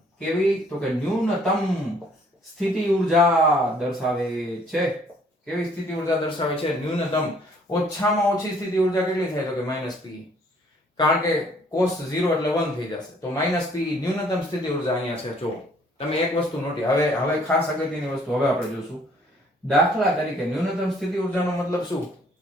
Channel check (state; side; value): normal; both; correlation 0.61